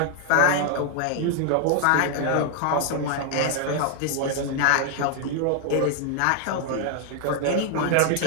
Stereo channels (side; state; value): both; different; correlation 0.00